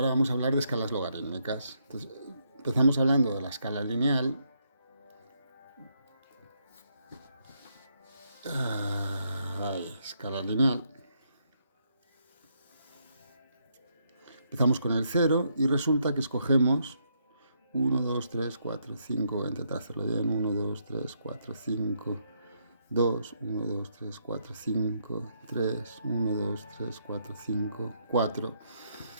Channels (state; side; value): inverted; both; correlation -0.76